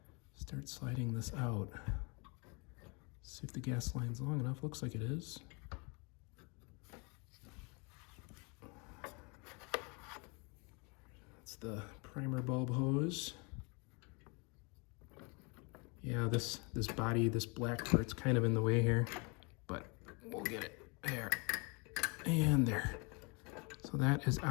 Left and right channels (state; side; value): quieter; right; 31.3 dB